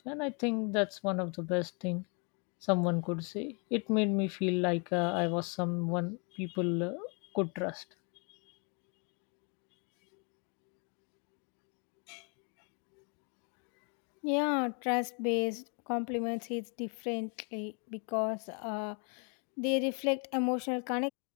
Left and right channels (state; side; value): quieter; right; 35.9 dB